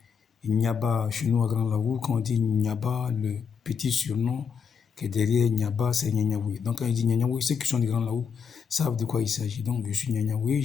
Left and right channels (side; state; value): right; quieter; 6.4 dB